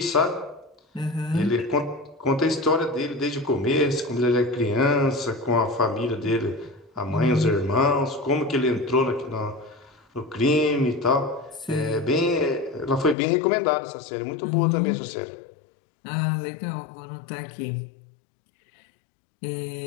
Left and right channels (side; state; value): right; drops out; at 13.2 s